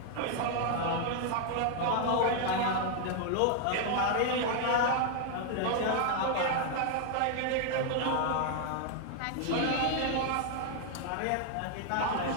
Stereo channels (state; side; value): different; both; correlation 0.00